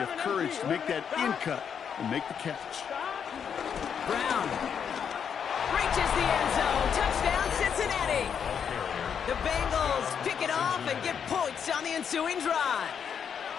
of courage to make that in cut and make the catch. Brown reaches the end zone. Touchdown, Cincinnati. The Bengals pick it off and get points on the ensuing drive.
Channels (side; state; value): right; quieter; 7.5 dB